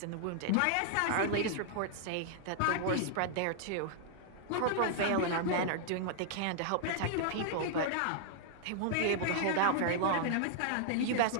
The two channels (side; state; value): both; different; correlation -0.01